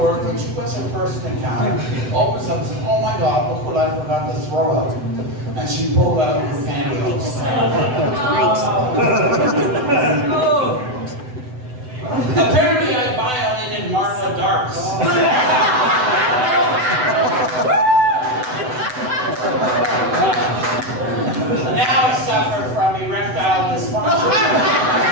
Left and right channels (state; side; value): late; left; 7.9 ms